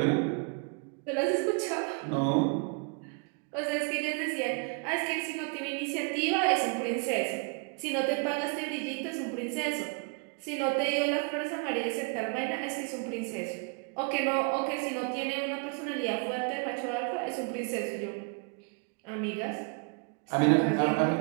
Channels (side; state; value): left; quieter; 36.2 dB